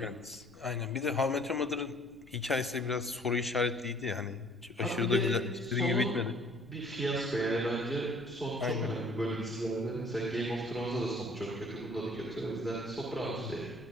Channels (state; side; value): noise; left; rumble, 26 dB below the sound